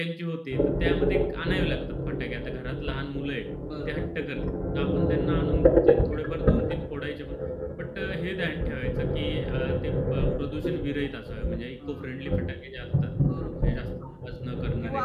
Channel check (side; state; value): both; identical; correlation 1.00